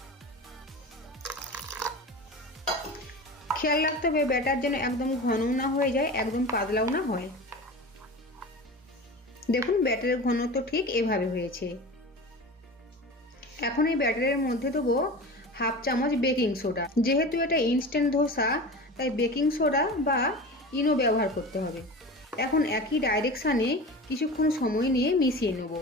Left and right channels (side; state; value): both; normal; correlation 0.32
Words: খেয়াল রাখতে হবে ব্যাটার যেন একদম ঘনও না হয়ে যায়, একদম পাতলাও না হয়। দেখুন ব্যাটারের ঘনত্ব ঠিক এভাবে হয়েছে। এখন এই ব্যাটারের মধ্যে দেবো 1/2 চামচ বেকিং সোডা। যেহেতু এটা ইনস্ট্যান্ট ধোসা তাই বেকিং সোডা বা ইনো ব্যবহার করতে হবে। এখন একই ডাইরেকশানে কিছুক্ষণ সময় নিয়ে মিশিয়ে নেব।